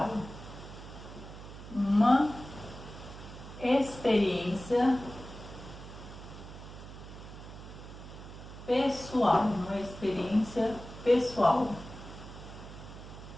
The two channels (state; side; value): noise; right; hum, 13 dB below the sound